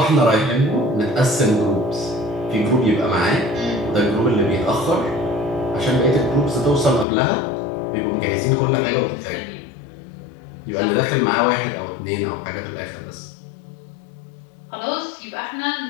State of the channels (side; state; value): right; drops out; at 7.1 s